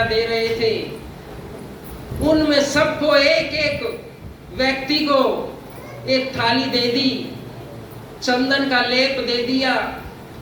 दे रहे थे उनमें सबको एक एक व्यक्ति को एक थाली दे दी, चंदन का लेप दे दिया,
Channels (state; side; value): identical; both; correlation 1.00